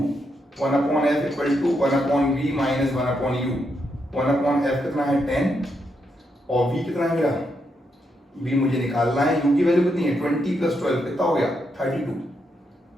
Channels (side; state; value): both; normal; correlation 0.81